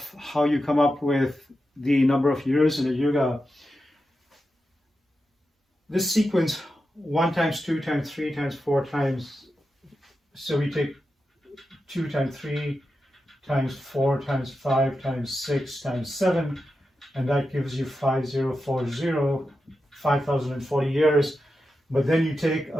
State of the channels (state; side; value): normal; both; correlation 0.89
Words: how you come up with the number of years in a yuga, this sequence 1 times 2 times 3 times 4 times, so we take 2 times 3 times 4 times 5 times 6 times 7, and that gives you 5040, 5040 years. But then you take